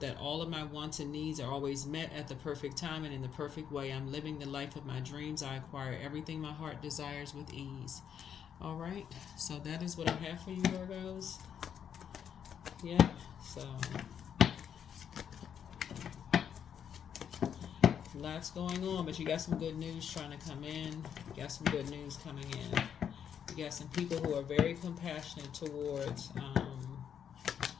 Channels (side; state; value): right; quieter; 8.3 dB